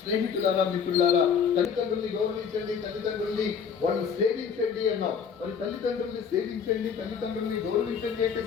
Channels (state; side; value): quieter; right; 6.7 dB